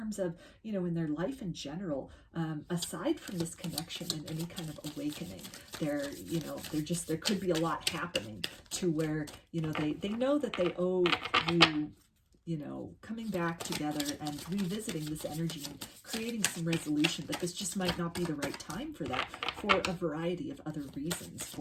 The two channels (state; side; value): identical; both; correlation 1.00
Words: of, in their life in general, aside from this connection and any kind of awakening, there could be a lot happening to where, they know that they owe you, coming back together and revisiting this energy and creating some resolution, but this just might not be the right time for that, for a variety of other reasons